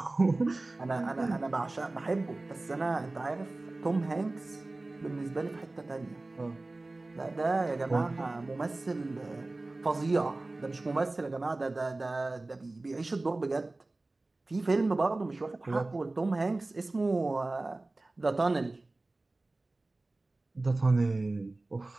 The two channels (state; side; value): quieter; left; 3.0 dB